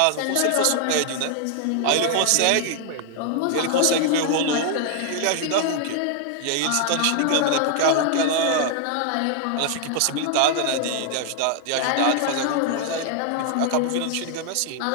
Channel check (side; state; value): both; different; correlation 0.00